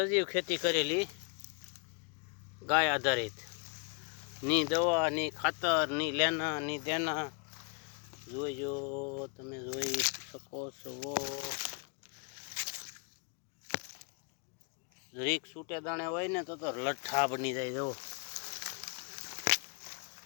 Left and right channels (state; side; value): quieter; right; 34.2 dB